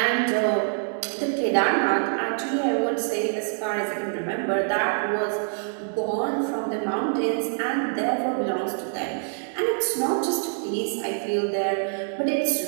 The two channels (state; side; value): silent; left; digital silence